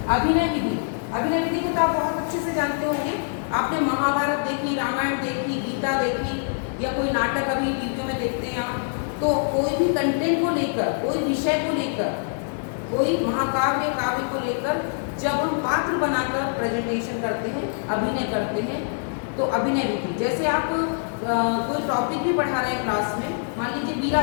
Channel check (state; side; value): silent; right; digital silence